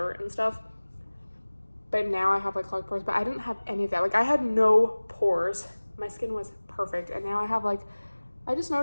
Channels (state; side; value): inverted; both; correlation -1.00